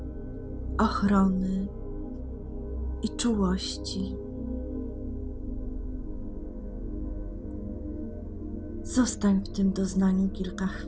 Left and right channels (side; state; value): both; identical; correlation 1.00